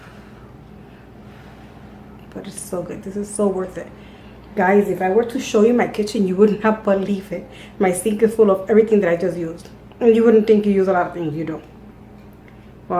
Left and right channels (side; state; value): both; identical; correlation 1.00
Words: But it's so good. This is so worth it. Guys, if I were to show you my kitchen, you would not believe it. My sink is full of everything that I just used. And you wouldn't think you use a lot of things, you do.